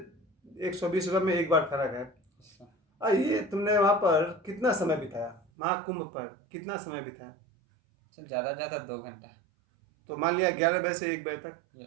120 रुपये में एक बार खाना खाया। और ये तुमने वहाँ पर कितना समय बिताया? महाकुंभ पर कितना समय बिताया? ज़्यादा 2 घंटा। तो मान लिया 11 बजे से 1 बजे तक।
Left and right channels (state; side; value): drops out; left; at 5.4 s